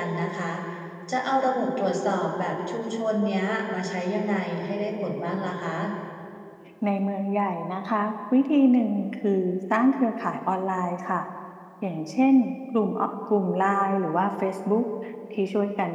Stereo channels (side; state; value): both; identical; correlation 1.00